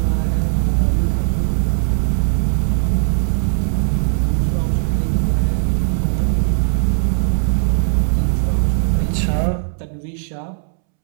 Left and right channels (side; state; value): left; silent; 67 dB below the other